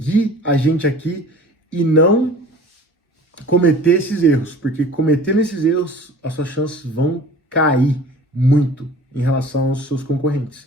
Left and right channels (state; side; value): normal; both; correlation 0.45